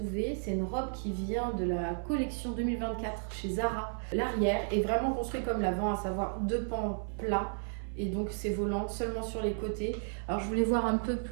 C'est une robe qui vient de la collection 2024 chez Zara. L'arrière est vraiment construit comme l'avant, à savoir deux pans plats. Et donc ces volants seulement sur les côtés. Alors je voulais voir un peu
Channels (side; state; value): left; silent; 56 dB below the other